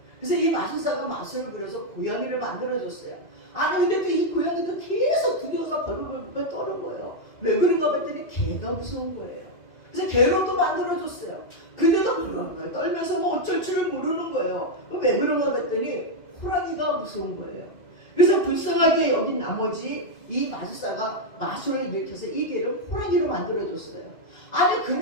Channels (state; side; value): late; right; 2.3 ms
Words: 그래서 이 마술사가 마술을 부려서 고양이를 만들어줬어요. 아니 근데 또 이 고양이도 계속 두려워서 벌벌벌 떠는 거예요. 왜 그런가 봤더니 개가 무서운 거예요. 그래서 개로도 만들어줬어요. 근데도 벌벌벌 떨면서 뭐 어쩔 줄을 모르는 거예요. 왜 그런가 봤더니 호랑이가 무서운 거예요. 그래서 불쌍하게 여긴 나머지 이 마술사가 마술을 일으켜서 이 개를 호랑이로 만들어줬어요. 아니